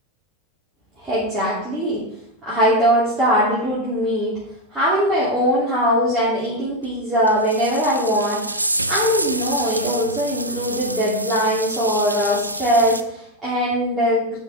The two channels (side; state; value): both; normal; correlation 0.08